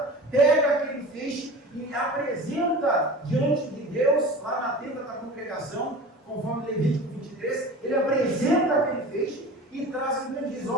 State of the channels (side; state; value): both; normal; correlation 0.37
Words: pega aquele feixe e apresenta diante de Deus, lá na tenda da congregação, conforme Levítico 23, ele apresenta aquele feixe e traz e diz: